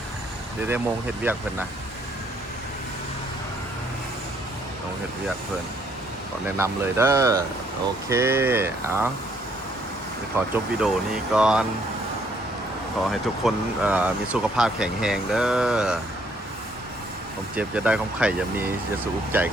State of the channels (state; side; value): normal; both; correlation 0.67